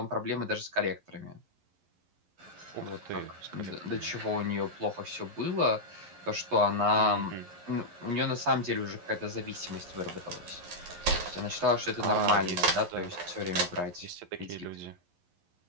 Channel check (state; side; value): late; left; 11 ms